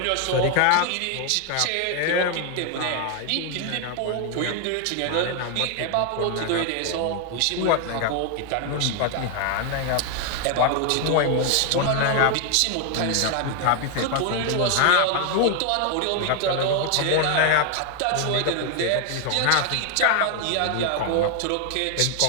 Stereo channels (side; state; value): both; different; correlation 0.01